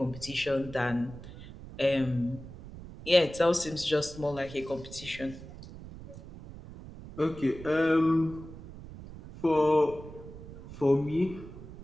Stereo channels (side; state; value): right; noise; rumble, 14 dB below the sound